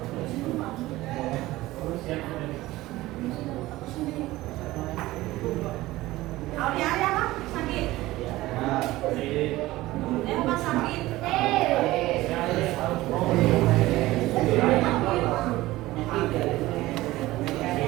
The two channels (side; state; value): left; quieter; 17.7 dB